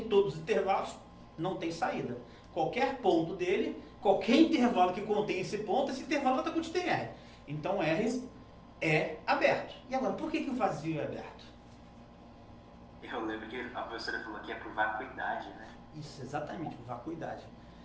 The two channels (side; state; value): both; identical; correlation 1.00